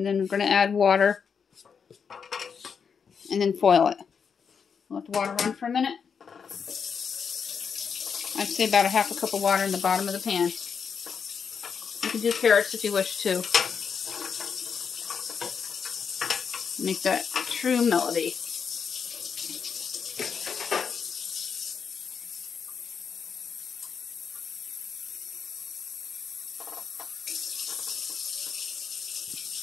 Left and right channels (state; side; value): quieter; right; 6.4 dB